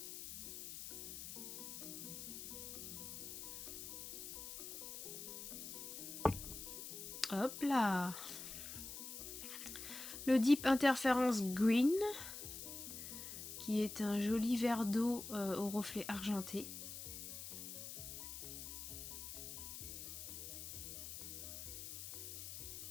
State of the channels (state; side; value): noise; left; hiss, 8 dB below the sound